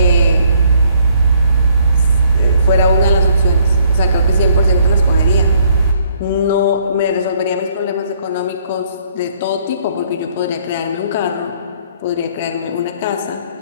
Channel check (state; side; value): inverted; both; correlation -0.65